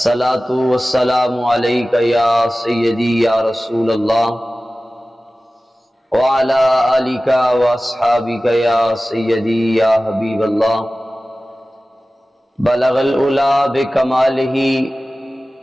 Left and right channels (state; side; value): normal; both; correlation 0.96